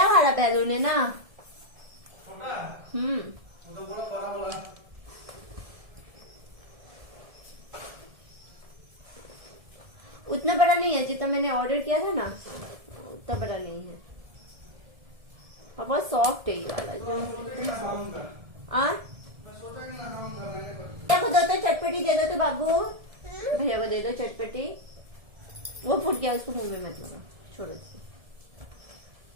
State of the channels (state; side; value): late; left; 1.7 ms